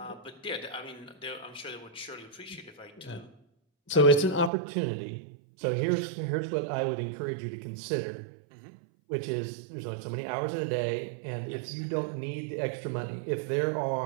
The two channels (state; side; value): drops out; left; at 4.5 s